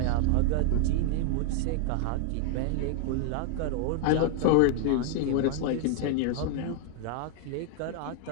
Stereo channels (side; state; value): both; different; correlation 0.00